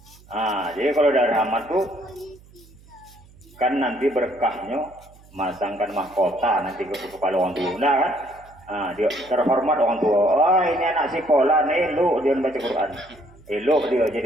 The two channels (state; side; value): noise; right; hum, 25 dB below the sound